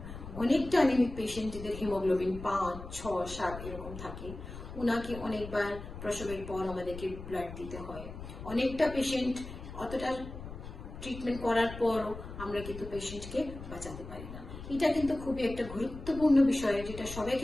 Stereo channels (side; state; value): left; noise; rumble, 11 dB below the sound